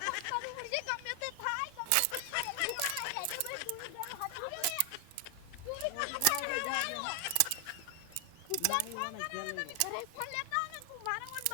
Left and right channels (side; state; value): both; different; correlation 0.00